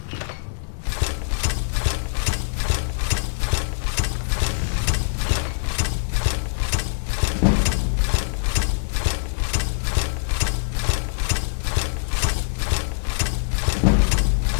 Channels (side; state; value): right; silent; 55 dB below the other